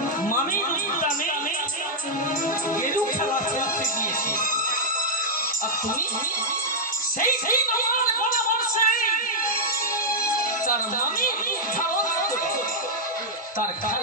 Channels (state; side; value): normal; both; correlation -0.05